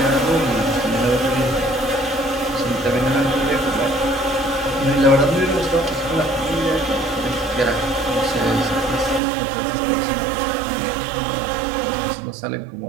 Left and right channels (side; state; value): left; drops out; at 9.2 s